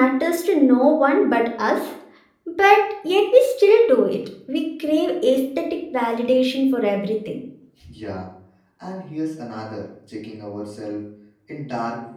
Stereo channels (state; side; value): identical; both; correlation 1.00